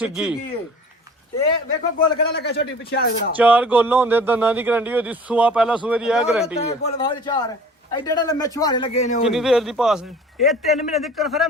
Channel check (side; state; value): both; normal; correlation 0.45